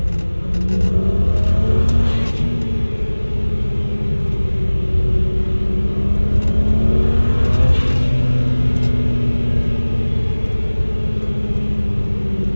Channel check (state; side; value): inverted; both; correlation -1.00